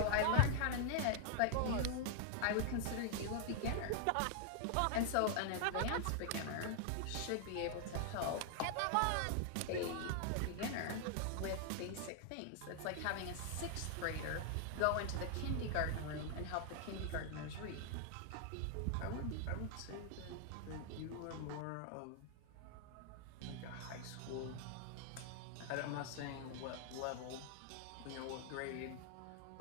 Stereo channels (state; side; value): different; both; correlation 0.00